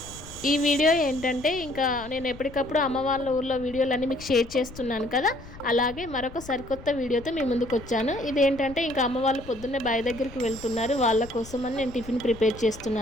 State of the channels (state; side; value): noise; left; rumble, 17 dB below the sound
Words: ఈ video ఏంటంటే, ఇంకా నేను ఎప్పటికప్పుడు అమ్మ వాళ్ళ ఊర్లో వీడియోలన్నీ మీకు షేర్ చేస్తున్నాను కదా, అలాగే మరొక సరికొత్త వీడియోతో మీ ముందుకు వచ్చాను. ఇదేంటంటే, ఇంకా అమ్మ వాళ్ళు పొద్దున్నే బావి దగ్గరికి వెళ్తున్నారు. వాళ్ళ కోసమని నేను టిఫిన్ ప్రిపేర్